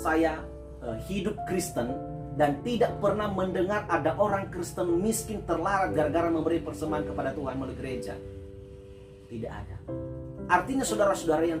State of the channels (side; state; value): both; identical; correlation 1.00